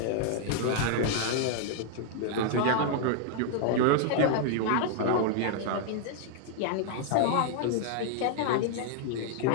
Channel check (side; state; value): both; different; correlation 0.00